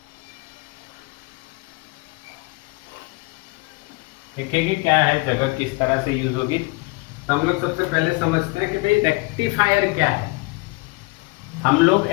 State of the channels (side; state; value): right; quieter; 25.6 dB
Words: देखेंगे क्या है, जगह किस तरह से यूज होगी। तो हम लोग सबसे पहले समझते हैं कि भाई रेक्टिफायर क्या है। हम लोग